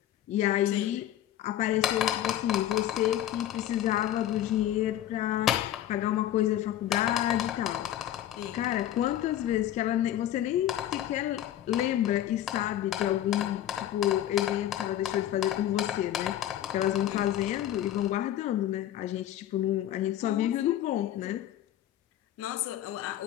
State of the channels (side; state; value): right; quieter; 12.2 dB